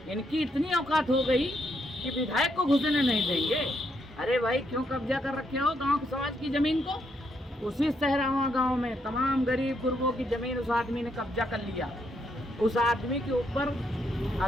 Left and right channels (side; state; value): both; normal; correlation 0.76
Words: इनकी इतनी औकात हो गई कि विधायक को घुसने नहीं देंगे। अरे भाई, क्यों कब्जा कर रखे हो गांव के समाज की जमीन को? उसी सहरावा गांव में तमाम गरीब गुरबों की जमीन उस आदमी ने कब्जा कर लिया। उस आदमी के ऊपर